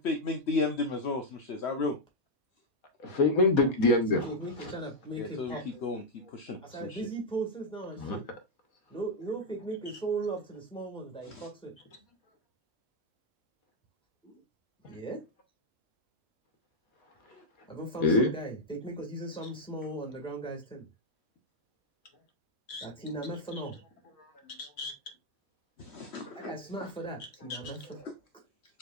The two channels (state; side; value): normal; both; correlation 0.00